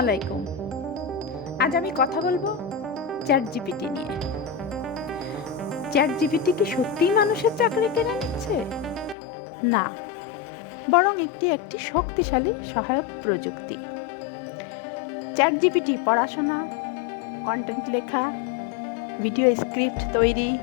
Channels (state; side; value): drops out; right; at 9.2 s